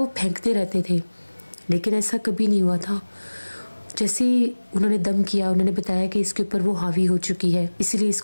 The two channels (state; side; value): inverted; both; correlation -1.00